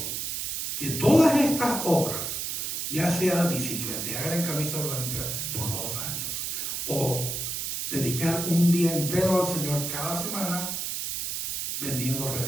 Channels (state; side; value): noise; right; hiss, 3 dB below the sound